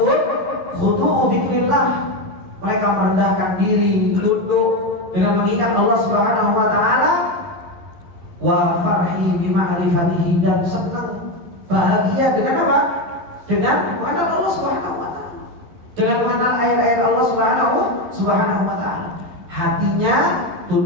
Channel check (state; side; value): late; left; 11 ms